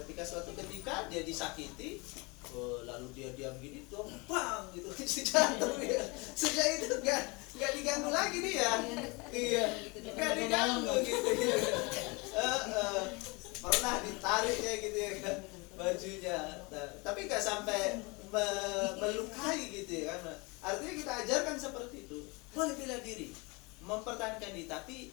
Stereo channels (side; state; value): right; quieter; 27.5 dB